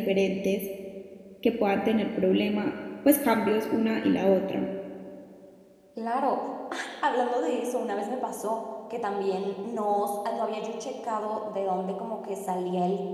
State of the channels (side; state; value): both; identical; correlation 1.00